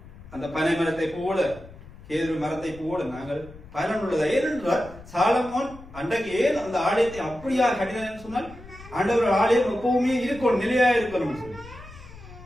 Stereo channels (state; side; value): noise; left; rumble, 18 dB below the sound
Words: அந்த பனை மரத்தை போல, கேதுரு மரத்தை போல நாங்கள் பயனுள்ளதா. ஏனென்றால் சாலமோன் அன்றைக்கு ஏன் அந்த ஆலயத்தை அப்படியா கட்டினான்னு சொன்னால், ஆண்டவர் ஆலயம் எப்பவுமே இருக்கணும், நிலையா இருக்கணும் சொல்லி,